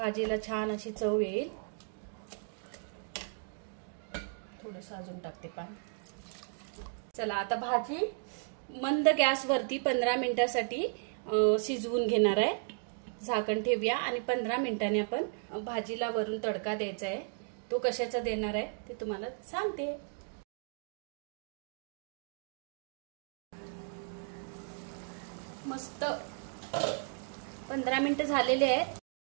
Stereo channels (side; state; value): left; silent; 55 dB below the other